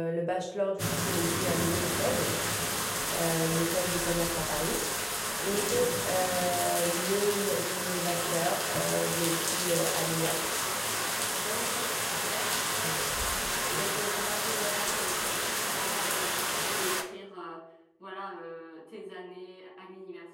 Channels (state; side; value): identical; both; correlation 1.00